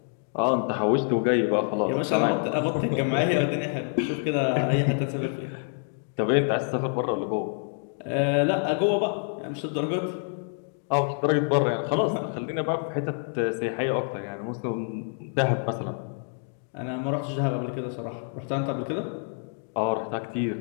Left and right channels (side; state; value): right; silent; 60 dB below the other